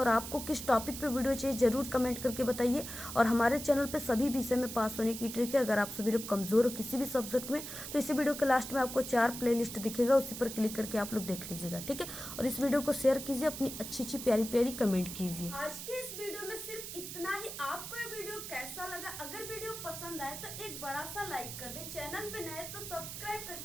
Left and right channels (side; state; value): right; noise; hiss, 8 dB below the sound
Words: आपको किस टॉपिक पे वीडियो चाहिए जरूर कमेंट करके बताइए। और हमारे चैनल पे सभी विषय में पास होने की ट्रिक है। अगर आप सभी लोग कमजोर हो किसी भी सब्जेक्ट में, तो इसी वीडियो के लास्ट में आपको 4 प्लेलिस्ट दिखेगा, उसी पर क्लिक करके आप लोग देख लीजिएगा। ठीक है, और इस वीडियो को शेयर कीजिए, अपनी अच्छी प्यारी कमेंट कीजिए। आज के इस वीडियो में सिर्फ इतना ही। आपको ये वीडियो कैसा लगा? अगर वीडियो पसंद आए तो एक बड़ा सा लाइक कर दें। चैनल पे नए तो सब्सक्राइब